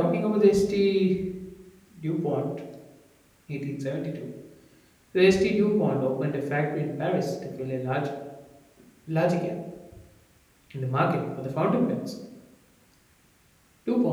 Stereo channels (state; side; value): identical; both; correlation 1.00